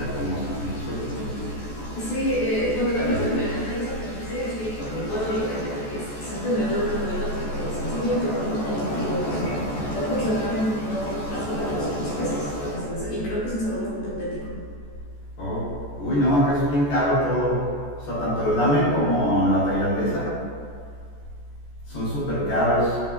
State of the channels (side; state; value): right; late; 14 ms